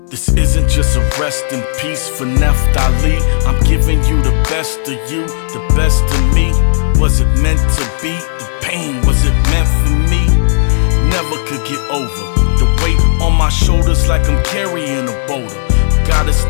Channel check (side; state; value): right; silent; digital silence